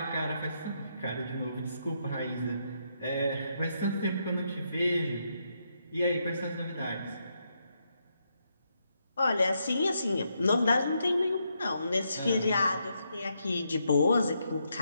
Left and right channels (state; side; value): inverted; both; correlation -0.79